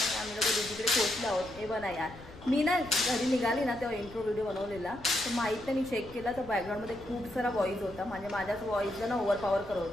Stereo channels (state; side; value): noise; left; rumble, 18 dB below the sound